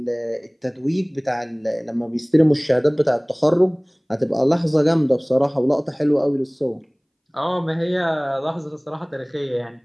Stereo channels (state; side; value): identical; both; correlation 1.00